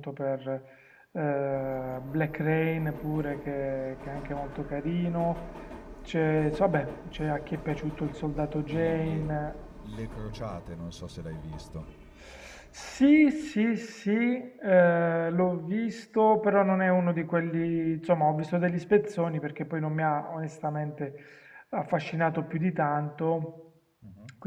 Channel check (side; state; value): both; identical; correlation 1.00